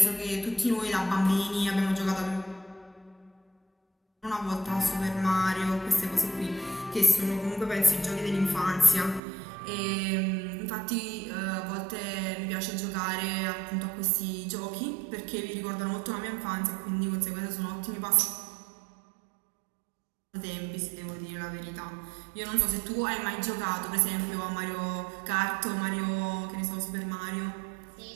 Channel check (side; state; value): left; drops out; at 9.2 s